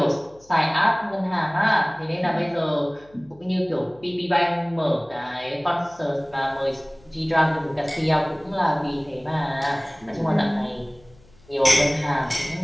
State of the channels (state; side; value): noise; left; hum, 28 dB below the sound